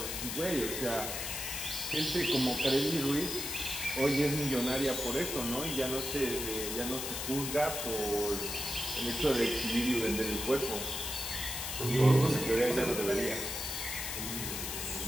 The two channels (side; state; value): left; noise; hiss, 4 dB below the sound